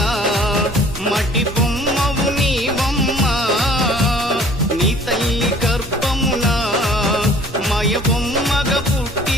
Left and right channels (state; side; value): normal; both; correlation 0.53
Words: మట్టి బొమ్మవు నీవమ్మ నీ తల్లి గర్భమున మాయ బొమ్మగా